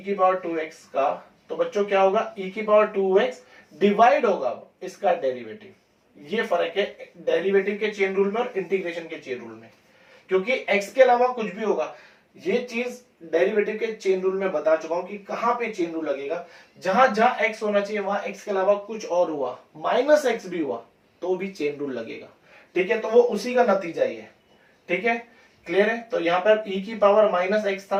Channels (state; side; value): identical; both; correlation 1.00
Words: की पावर 2x का, तो बच्चों क्या होगा, e की पावर 2x डिवाइड होगा इसका डेरिवेटिव। ये फर्क है डेरिवेटिव के चेन रूल में और इंटीग्रेशन के चेन रूल में, क्योंकि x के अलावा कुछ भी होगा। ये चीज डेरिवेटिव के चेन रूल में बता चुका हूं कि कहां पे चेन रूल लगेगा, जहां जहां x होना चाहिए वहां x के अलावा कुछ और हुआ, -x भी हुआ तो भी चेन रूल लगेगा, ठीक है। तो वो उसी का नतीजा ही है, ठीक है, क्लियर है। तो यहाँ पर e की पावर -x